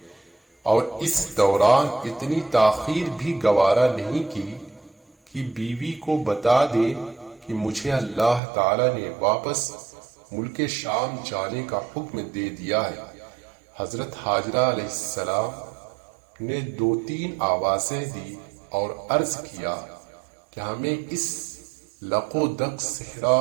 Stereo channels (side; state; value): left; drops out; at 8.4 s